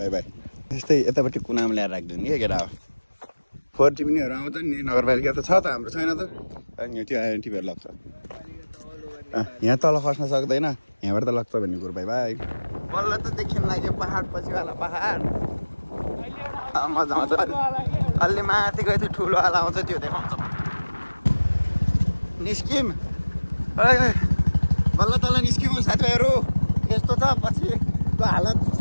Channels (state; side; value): inverted; both; correlation -1.00